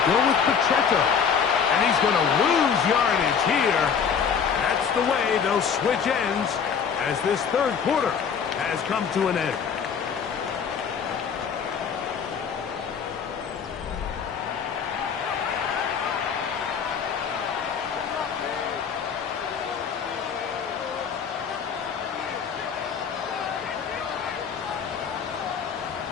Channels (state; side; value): quieter; right; 6.9 dB